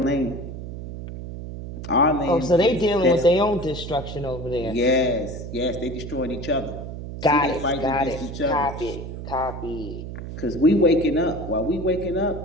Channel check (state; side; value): noise; right; hum, 9 dB below the sound